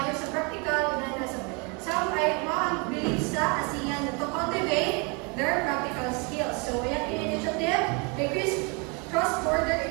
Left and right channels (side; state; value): left; quieter; 31.9 dB